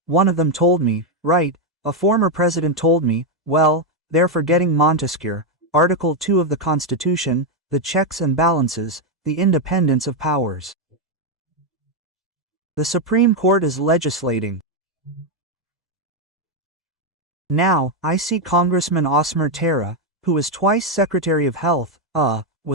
one of them told me, right, a former president told me, well, they're forgetting Montesquieu, Article 2 of the Constitution, the checks and balances, the independence of powers. The Supreme Court is legislating. Now, I see Congressman Osmer Terra, who is twice Secretary of Health,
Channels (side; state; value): both; normal; correlation 0.03